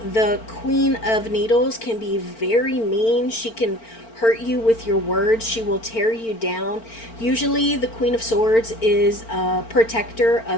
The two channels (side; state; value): right; late; 4.4 ms